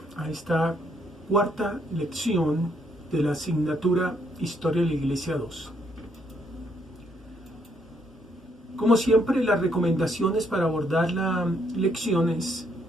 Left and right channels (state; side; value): normal; both; correlation 0.72